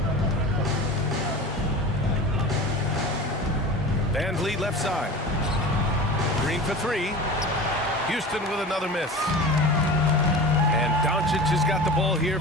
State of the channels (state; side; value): normal; both; correlation 0.34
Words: Van Vliet left side. Green for 3. Houston with another miss. And Doncic has got the ball here